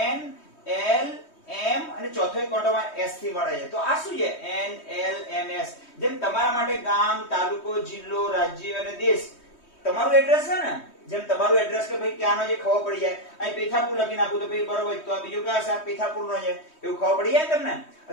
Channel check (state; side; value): late; right; 3.2 ms